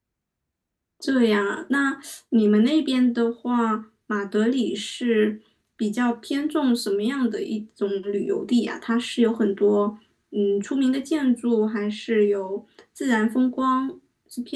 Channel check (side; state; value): both; identical; correlation 1.00